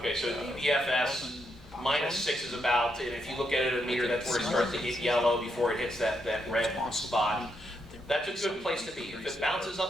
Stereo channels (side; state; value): both; normal; correlation 0.80